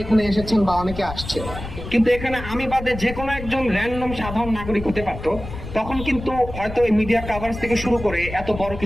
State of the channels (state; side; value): noise; left; rumble, 10 dB below the sound